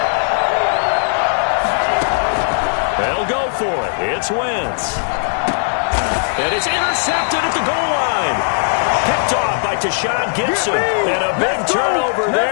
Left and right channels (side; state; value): right; silent; digital silence